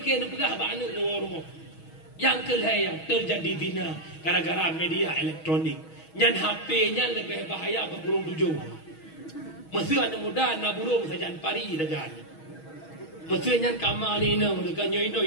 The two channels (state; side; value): late; right; 6.3 ms